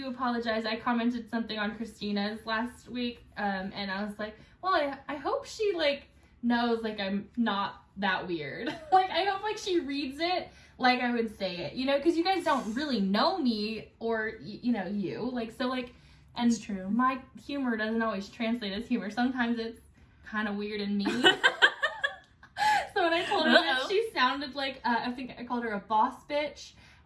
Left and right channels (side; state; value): both; identical; correlation 1.00